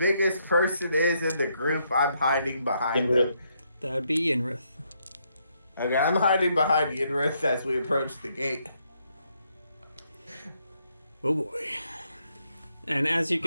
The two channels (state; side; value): inverted; both; correlation -0.75